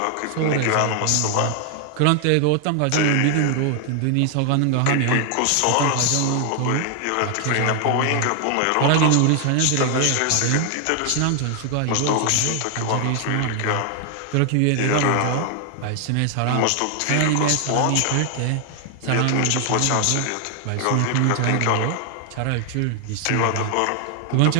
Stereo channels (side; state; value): both; different; correlation 0.00